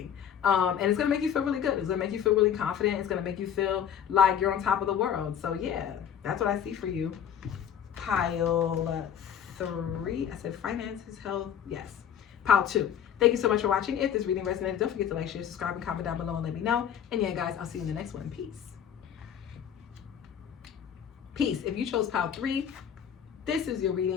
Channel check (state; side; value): quieter; right; 8.8 dB